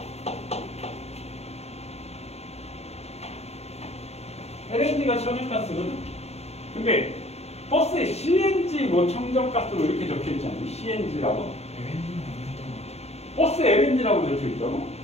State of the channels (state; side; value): late; right; 0.31 ms